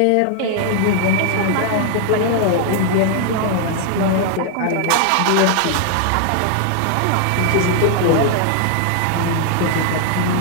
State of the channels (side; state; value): both; different; correlation 0.00